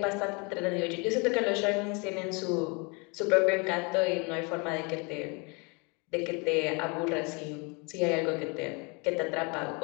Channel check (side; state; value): right; quieter; 30.8 dB